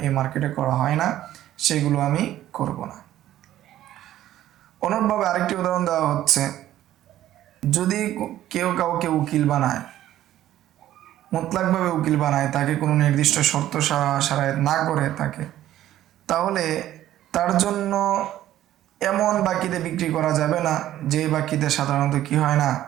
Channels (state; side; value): quieter; left; 13.1 dB